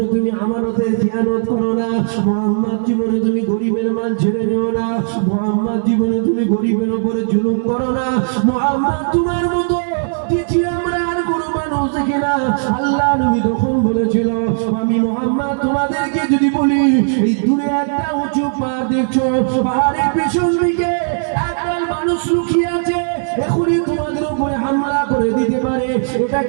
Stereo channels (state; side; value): silent; left; digital silence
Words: তুমি আমানতের খেয়ানত করো না, মুহাম্মদ জীবনে তুমি গরিবের মাল ছেড়ে নিও না, মুহাম্মদ জীবনে তুমি গরিবের উপরে জুলুম করো না, মুহাম্মদ তোমার মতো দ্বিতীয় আমরা আর কোনো মানুষ দেখি না। আল্লাহ নবী তখন বলেছিল আমি মুহাম্মদ তোমাদেরকে যদি বলি এই দূরে একটা উঁচু পাহাড় দেখছো, পাহাড়ের পেছন দিকে একদল মানুষ লুকিয়ে আছে, এখনই তোমাদের উপরে হামলা করে দিতে পারে,